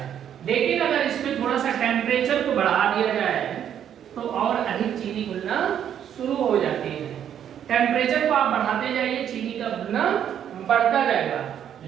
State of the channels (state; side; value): quieter; left; 9.5 dB